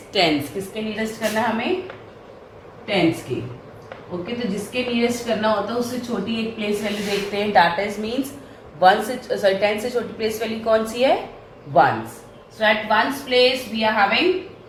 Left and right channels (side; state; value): both; identical; correlation 1.00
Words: tens. किसके nearest करना है हमें? tens के. Okay, तो जिसके nearest करना होता है उससे छोटी एक प्लेस वैल्यू देखते हैं. दैट इज मीन्स 10 से छोटी प्लेस वैल्यू कौन सी है? Ones. So at ones place we are having